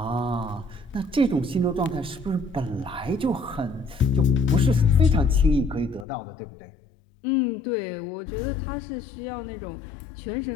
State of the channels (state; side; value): drops out; right; at 6.1 s